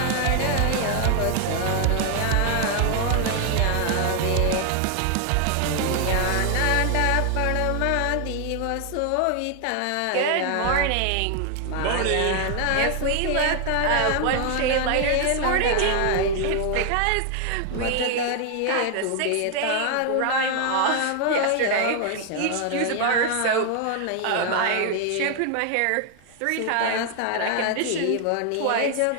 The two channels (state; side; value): different; both; correlation 0.00